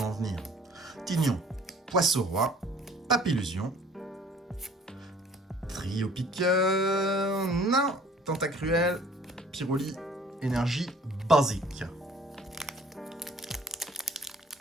en venir. Tignon, Poisson-Roi, Papillusion, Trio Piqueur, non, Tentacruel, Pyroli, Énergie basique.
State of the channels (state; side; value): normal; both; correlation 0.54